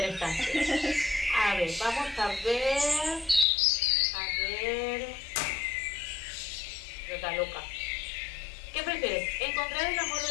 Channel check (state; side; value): drops out; right; at 3.5 s